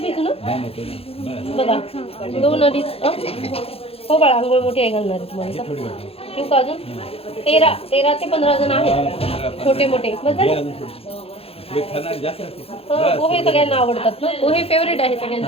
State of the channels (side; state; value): right; late; 0.28 ms